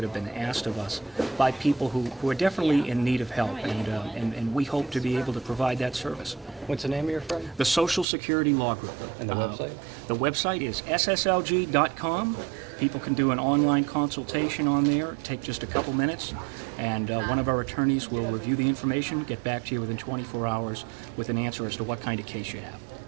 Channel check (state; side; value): drops out; left; at 8.1 s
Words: have been asked of us by people who are definitely in need of help, and we hope to be able to provide that service. What's the name of your firm? The Social Security Law Group. And the website? The website is sslg.com. People can do an online consultation on there, take just a couple minutes, and one of our attorneys will review the information, get back to you within 24 hours with an answer as to what kind of case you have.